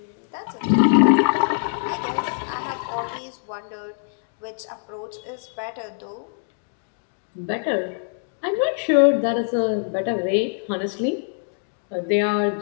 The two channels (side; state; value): right; silent; digital silence